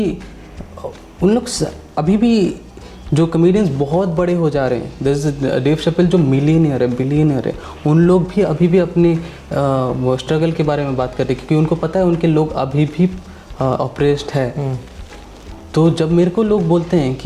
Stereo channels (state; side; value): identical; both; correlation 1.00